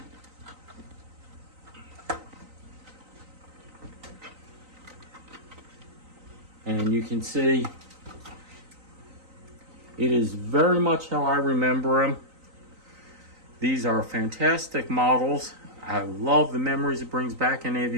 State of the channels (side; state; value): left; late; 3.9 ms